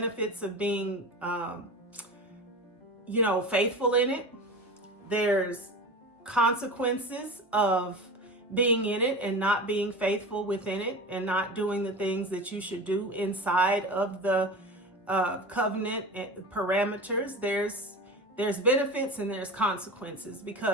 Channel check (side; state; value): both; normal; correlation 0.31